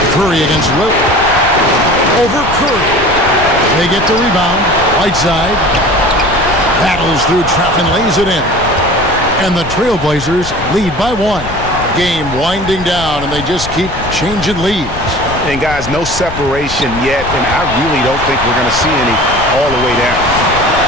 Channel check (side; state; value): left; noise; rumble, 11 dB below the sound